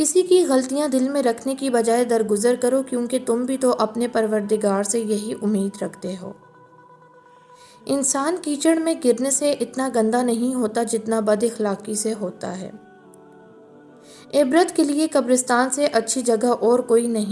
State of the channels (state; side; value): identical; both; correlation 1.00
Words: کی غلطیاں دل میں رکھنے کی بجائے درگزر کرو، کیونکہ تم بھی تو اپنے پروردگار سے یہی امید رکھتے ہو۔ انسان کیچڑ میں گرنے سے اتنا گندا نہیں ہوتا جتنا بد اخلاقی سے ہوتا ہے۔ عبرت کے لیے قبرستان سے اچھی جگہ اور کوئی